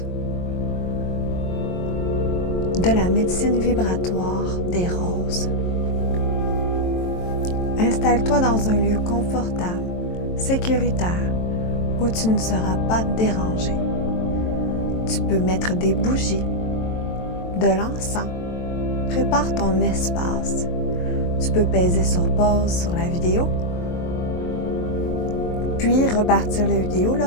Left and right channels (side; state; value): right; late; 23 ms